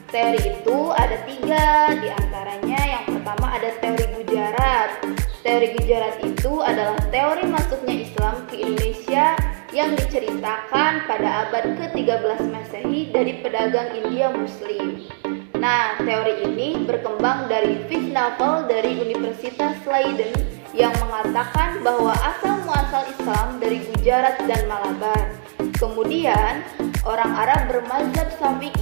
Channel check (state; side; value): silent; left; digital silence